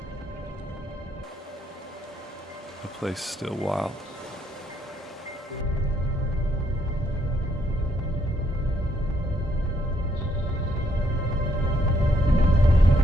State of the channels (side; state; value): both; normal; correlation 0.72